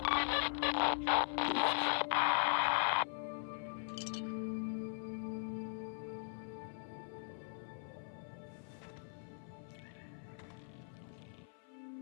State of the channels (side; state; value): right; silent; 51 dB below the other